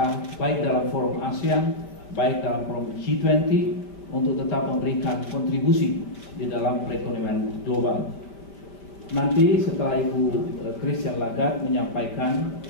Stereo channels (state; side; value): late; right; 5.1 ms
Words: baik dalam forum ASEAN, baik dalam forum G20 untuk tetap memberikan kontribusi di dalam perekonomian global. Nanti setelah Ibu Christine Lagarde menyampaikan